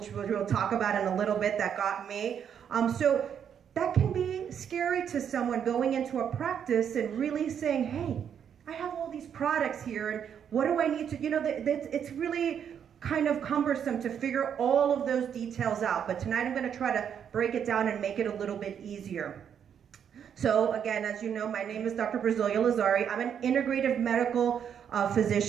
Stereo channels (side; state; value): left; quieter; 8.3 dB